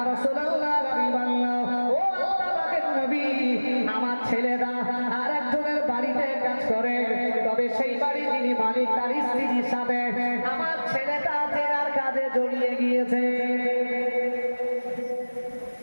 রাসূলুল্লাহ, হাবিবাল্লাহ, ও আল্লাহর নবী, আমার ছেলেরা আর একজনের বাড়িতে কাজ করে, তবে সেই বাড়ি যিনি মালিক তার স্ত্রীর সাথে আমার ছেলেটা জেনার কাজে জড়িয়ে গিয়েছে।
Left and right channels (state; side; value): inverted; both; correlation -1.00